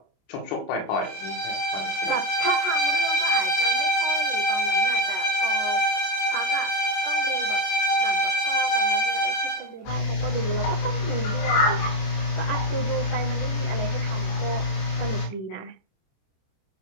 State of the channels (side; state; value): right; late; 27 ms